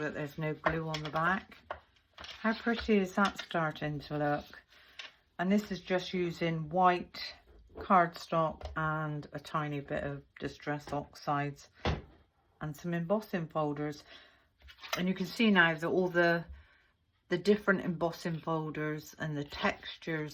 there's no glue on the back. How pretty is that starting to look? And this is just using white cardstock and a tiny bit of distress oxides and some embossing folders. And you can see now that all the different embossing folders and the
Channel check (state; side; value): identical; both; correlation 1.00